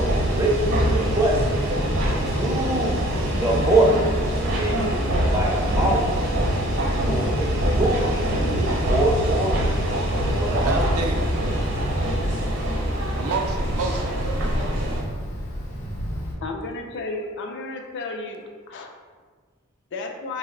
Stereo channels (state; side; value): normal; both; correlation 0.55